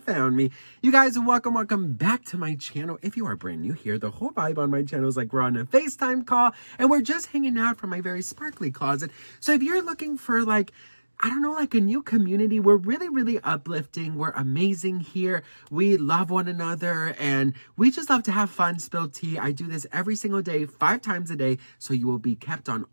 found me. You guys, welcome back to my channel. If you are brand new here, the whole vibe on my channel is like we're on a FaceTime call and we're just hanging out from my very sparkly closet. So if you're looking for like, I don't know, like a new community, we're really uplifting. We're amazing here. We love one another and we just love to have fun, spill tea. I do this every single day, 5 times a day, so you will be kept on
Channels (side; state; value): both; inverted; correlation -1.00